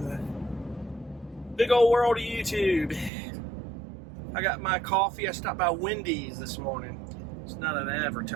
the big old world of YouTube? I got my coffee. I stopped by Wendy's this morning. It's not an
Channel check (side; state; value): left; drops out; at 3.1 s